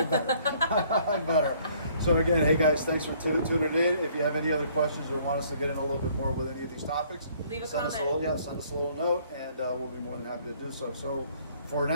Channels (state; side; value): inverted; both; correlation -0.61